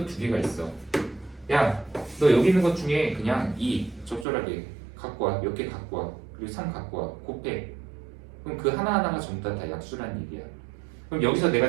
2개가 있어. 야, 너 여기 있는 것 중에 그냥 2 적절하게 갖고 와. 몇 개 갖고 와. 그리고 3 갖고 와. 곱해. 그럼 그 하나하나가 전부 다 약수라는 얘기야. 그럼 여기서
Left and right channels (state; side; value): drops out; left; at 4.2 s